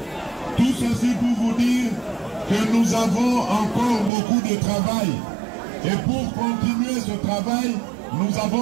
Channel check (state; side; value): drops out; left; at 4.1 s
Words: Tout ceci pour vous dire que nous avons encore beaucoup de travail. Et pour continuer ce travail, nous